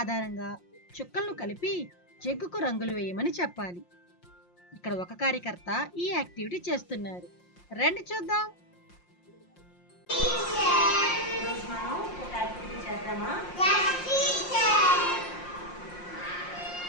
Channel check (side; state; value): right; late; 5.6 ms